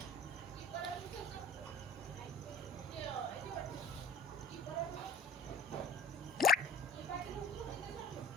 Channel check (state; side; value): normal; both; correlation 0.45